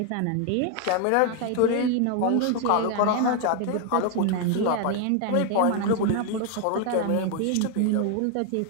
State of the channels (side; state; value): both; different; correlation 0.00